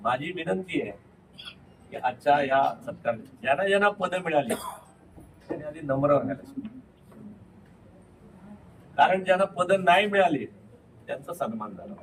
माझी विनंती आहे की आजच्या या सत्कार ज्यांना ज्यांना पद मिळाली त्यांनी आधी नम्र राहायला, कारण ज्यांना पद नाही मिळाले त्यांचा सन्मान झाला.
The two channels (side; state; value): both; identical; correlation 1.00